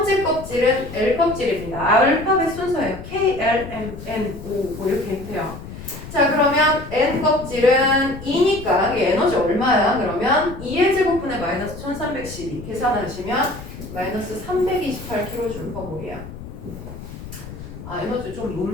껍질은 L 껍질입니다. 알파벳 순서예요. K, L, M, N, O 뭐 이렇게 돼요. 자, 그러면 N 껍질은 2니까 이게 에너지 얼마야? 그러면 2의 제곱분의 마이너스 1312 계산하시면 마이너스 328kJ/몰이에요. 아, 에너지 좀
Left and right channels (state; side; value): noise; left; rumble, 12 dB below the sound